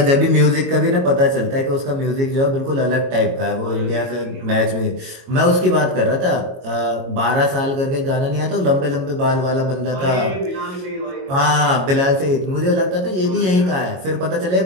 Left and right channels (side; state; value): left; late; 22 ms